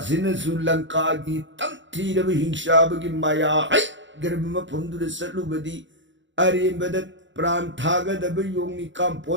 kagi tangti na hingshabagi maya ay garba mapundura sa lubadi arimbadat Pranthagadabu yung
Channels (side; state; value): left; late; 0.54 ms